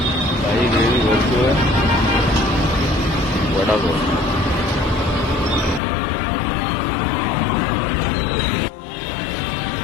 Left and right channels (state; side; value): drops out; right; at 5.8 s